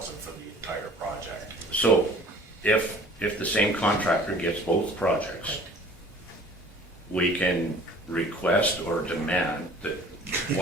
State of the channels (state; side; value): normal; both; correlation 0.49